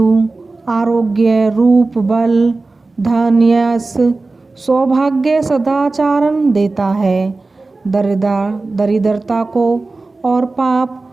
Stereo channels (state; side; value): quieter; left; 3.5 dB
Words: आरोग्य रूप बल धन यश सौभाग्य सदाचारण देता है। दरिद्रता को और पाप